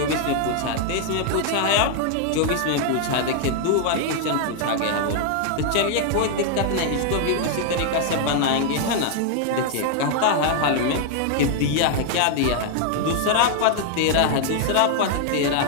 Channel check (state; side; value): different; both; correlation 0.00